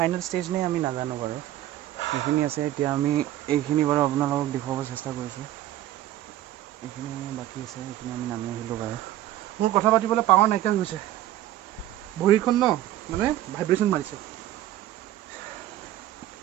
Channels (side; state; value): left; quieter; 13.8 dB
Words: ষ্টেজ নে আমি নাজানো বাৰু এইখিনি আছে এতিয়া আমি এইখিনি বাৰু আপোনালোকক দেখুৱাব চেষ্টা কৰিছোঁ এইখিনি বাকী আছে এইখিনি আমি নামি আহিলোঁ বাৰু মোৰ কথা পাতিবলৈ পাৱাৰ নাইকিয়া হৈছে ভৰিখন ন মানে ভাইব্ৰেশ্যন মাৰিছে